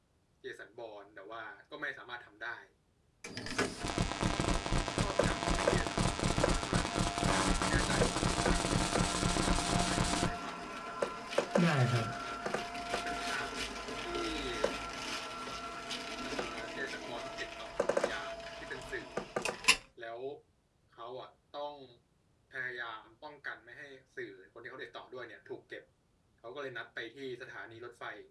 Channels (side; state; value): both; identical; correlation 1.00